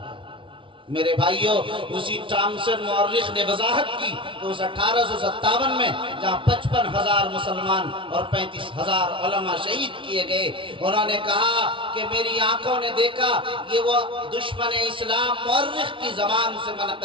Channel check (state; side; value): late; left; 0.25 ms